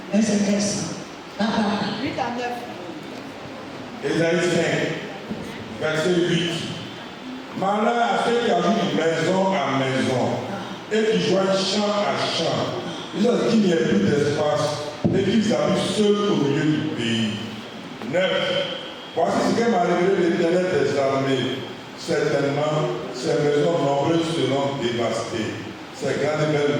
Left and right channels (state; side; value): identical; both; correlation 1.00